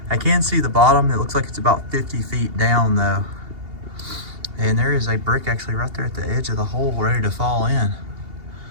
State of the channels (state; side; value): late; left; 2.8 ms